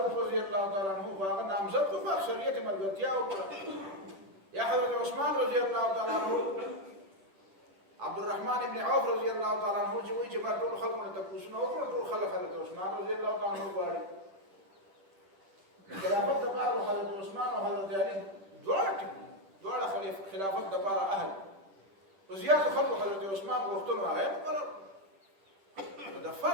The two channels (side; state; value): left; late; 10 ms